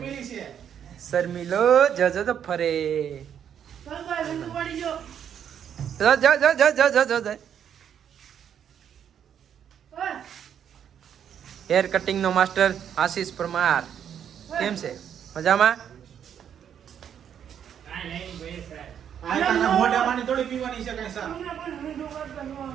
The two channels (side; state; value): left; quieter; 8.8 dB